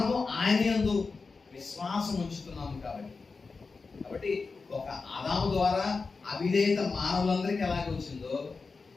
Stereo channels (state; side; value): quieter; right; 4.4 dB